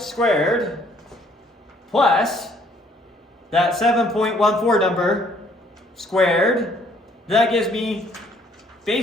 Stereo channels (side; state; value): both; normal; correlation 0.62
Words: squared plus that 7.14 number squared, that gives me